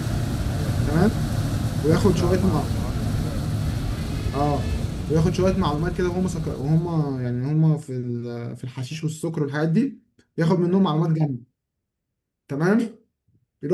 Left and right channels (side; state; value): both; identical; correlation 1.00